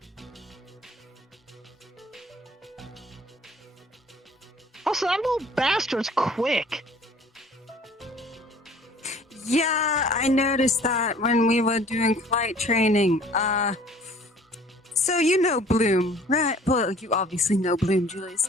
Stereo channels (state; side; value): normal; both; correlation 0.52